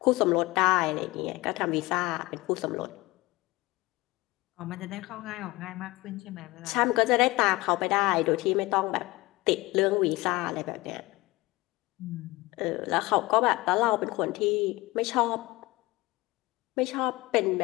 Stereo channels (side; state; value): right; quieter; 21.1 dB